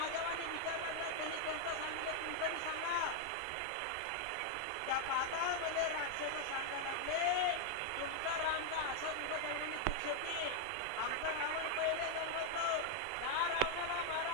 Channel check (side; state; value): both; different; correlation 0.00